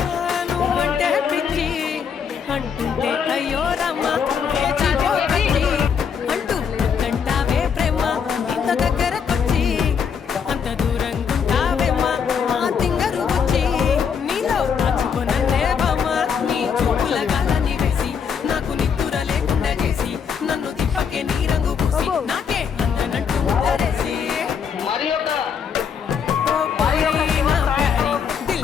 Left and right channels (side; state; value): right; quieter; 6.9 dB